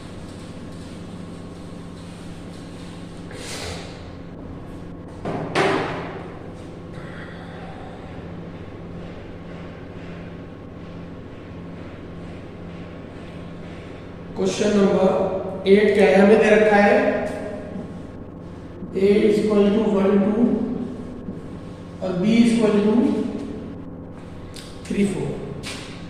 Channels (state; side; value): identical; both; correlation 1.00